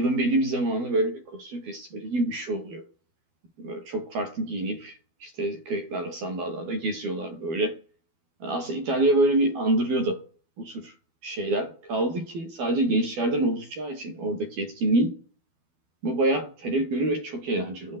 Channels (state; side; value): late; left; 12 ms